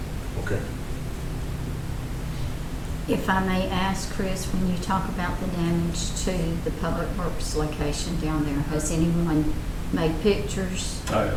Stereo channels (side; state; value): both; identical; correlation 1.00